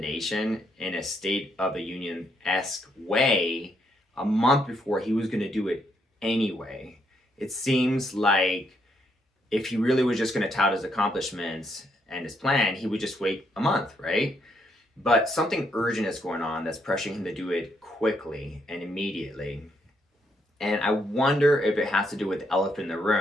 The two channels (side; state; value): both; normal; correlation 0.75